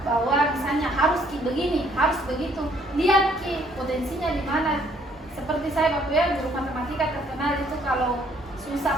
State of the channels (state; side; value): normal; both; correlation 0.64